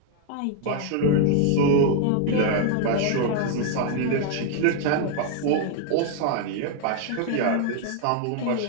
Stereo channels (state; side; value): different; both; correlation 0.00